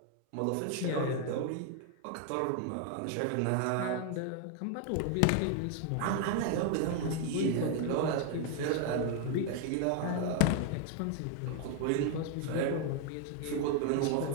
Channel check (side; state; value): both; different; correlation 0.00